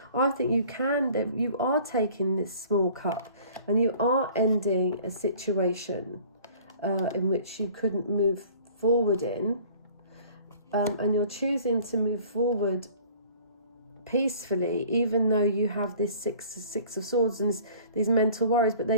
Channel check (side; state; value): both; inverted; correlation -0.49